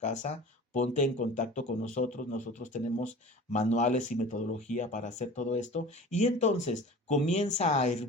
Ponte en contacto con nosotros. Nosotros tenemos manuales y metodología para hacer todo esto. Y entonces comienza a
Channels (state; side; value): normal; both; correlation 0.39